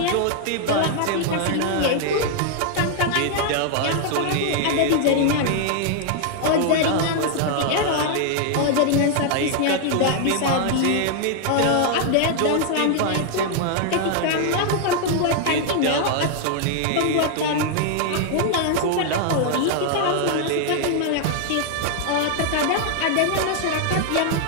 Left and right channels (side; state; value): both; different; correlation 0.00